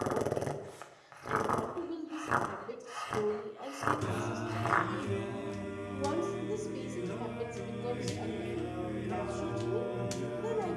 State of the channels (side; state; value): both; identical; correlation 1.00